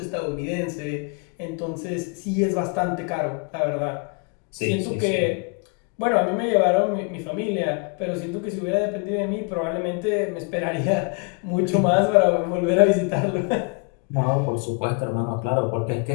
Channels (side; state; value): right; quieter; 34.2 dB